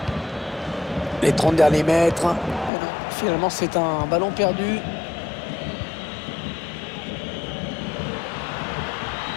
Les 30 derniers mètres. Finalement, c'est un ballon perdu.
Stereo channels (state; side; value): drops out; right; at 2.7 s